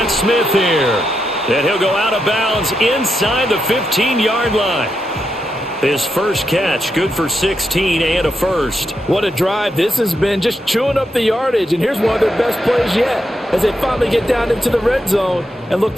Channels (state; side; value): normal; both; correlation 0.84